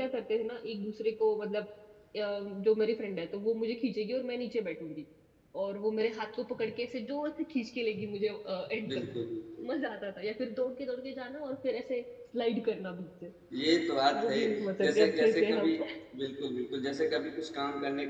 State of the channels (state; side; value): identical; both; correlation 1.00